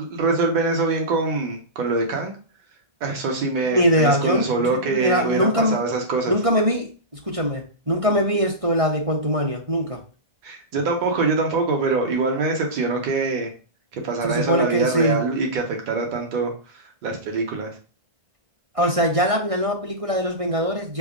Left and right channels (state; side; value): late; left; 1.6 ms